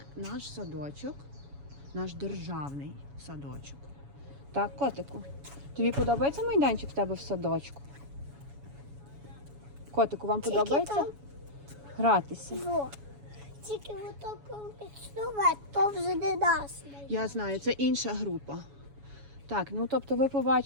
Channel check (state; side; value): late; left; 7.1 ms